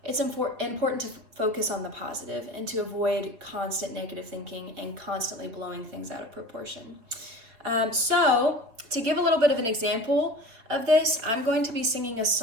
It's important to focus on the positive and to avoid constant negative thinking and constantly blowing things out of proportion. So to give a little bit of an example of this, I'm going to be singing a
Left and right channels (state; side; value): late; left; 4.3 ms